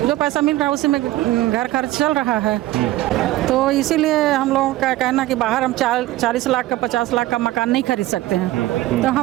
जो पैसा मिल रहा है उसी में घर खर्च चल रहा है। तो इसीलिए हम लोगों का कहना कि बाहर हम 40 लाख का 50 लाख का मकान नहीं खरीद सकते हैं, तो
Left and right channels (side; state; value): left; quieter; 16.5 dB